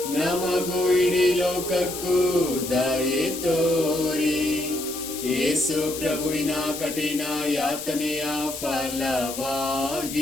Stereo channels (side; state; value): left; noise; hiss, 9 dB below the sound